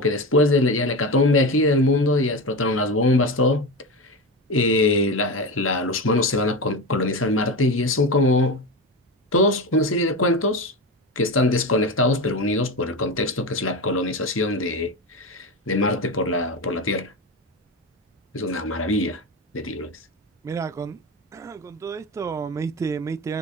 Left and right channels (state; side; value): normal; both; correlation 0.22